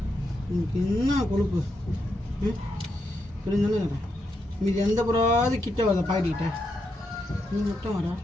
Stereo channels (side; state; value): both; normal; correlation 0.82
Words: எனக்கு என்ன கொழுப்பு புரிஞ்சானே. மீது எந்த புறாவது கிட்ட வர பாக்கிட்ட நீ மட்டும் வர.